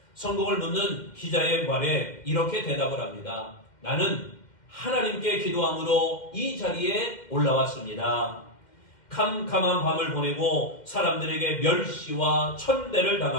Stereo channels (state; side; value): late; right; 2.1 ms